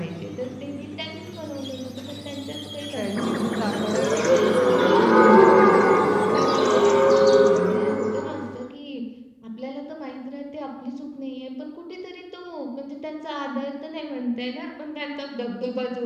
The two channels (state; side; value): identical; both; correlation 1.00